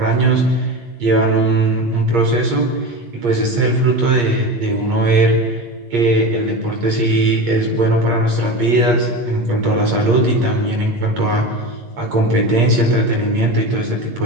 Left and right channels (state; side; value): late; left; 8.5 ms